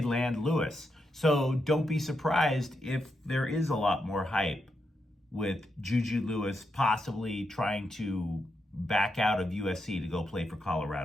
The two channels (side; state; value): both; normal; correlation 0.83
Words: land Lewis. So don't be surprised if there is a lot more hype with Juju Lewis possibly trying to back out of USC to go play for